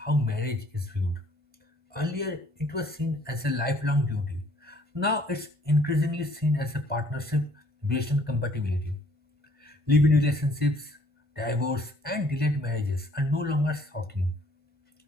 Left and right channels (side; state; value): left; late; 1.5 ms